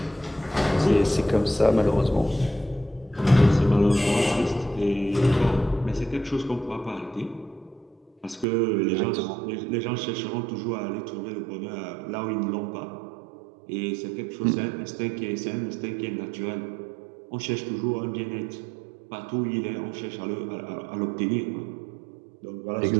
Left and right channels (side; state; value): left; drops out; at 8.5 s